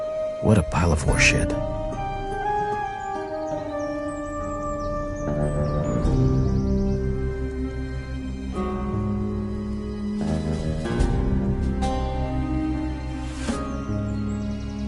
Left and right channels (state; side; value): identical; both; correlation 1.00